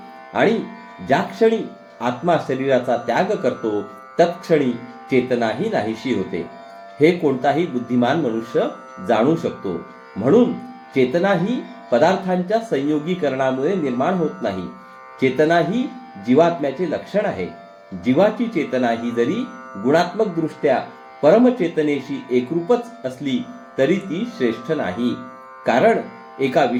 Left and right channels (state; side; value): identical; both; correlation 1.00